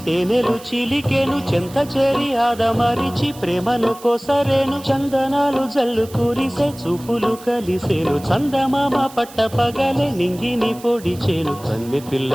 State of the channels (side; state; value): right; noise; hiss, 19 dB below the sound